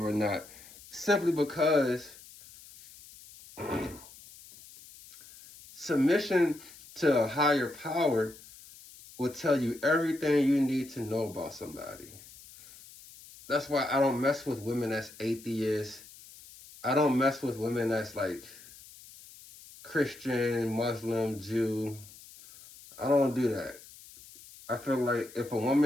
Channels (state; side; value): noise; left; hiss, 20 dB below the sound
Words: or not, simply because submission to a higher power will tell you everything you need to know about somebody. That's why I don't mess with women that's atheists. I don't mess with women that's like Christian, Muslim, Jew. I don't do that. I feel like if a